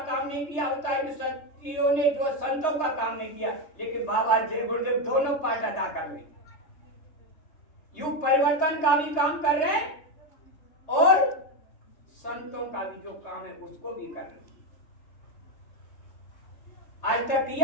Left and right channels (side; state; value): right; late; 3.3 ms